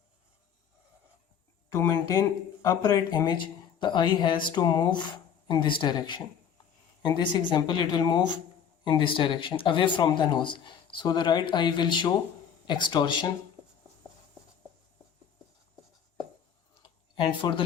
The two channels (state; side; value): quieter; right; 8.1 dB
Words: to maintain upright image, the eye has to move in this direction. In this example, it will move in this direction, away from the nose. So the right eye will show extorsion, and for the